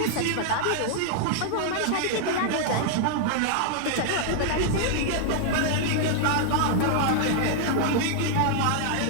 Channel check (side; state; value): both; different; correlation 0.00